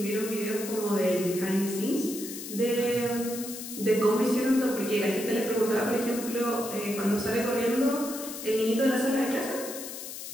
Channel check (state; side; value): noise; left; hiss, 9 dB below the sound